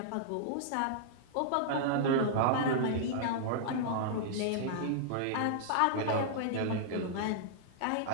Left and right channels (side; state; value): both; different; correlation -0.01